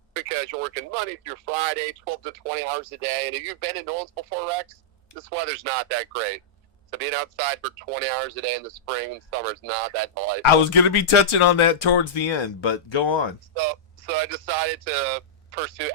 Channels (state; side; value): normal; both; correlation -0.12